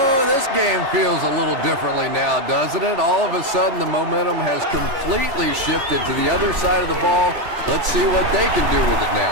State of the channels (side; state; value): left; late; 3.6 ms